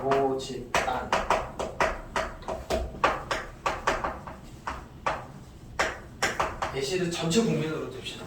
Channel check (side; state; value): both; identical; correlation 1.00